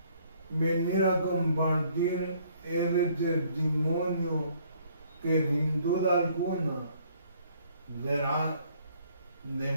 venir a compartir ese testimonio que sin duda alguna será de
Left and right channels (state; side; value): inverted; both; correlation -0.63